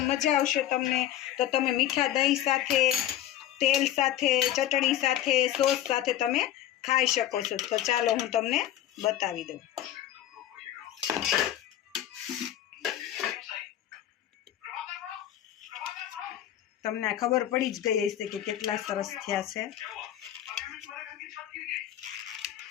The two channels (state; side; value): quieter; right; 12.3 dB